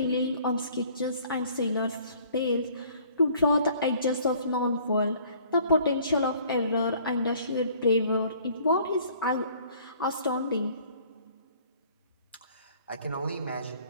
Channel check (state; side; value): inverted; both; correlation -0.56